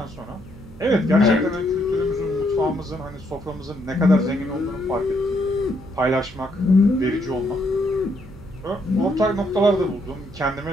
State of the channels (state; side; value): noise; right; hum, 19 dB below the sound